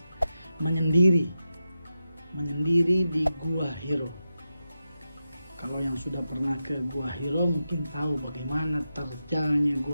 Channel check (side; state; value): both; inverted; correlation -0.90